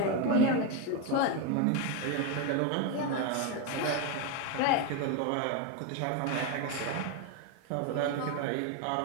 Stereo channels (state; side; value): different; both; correlation 0.02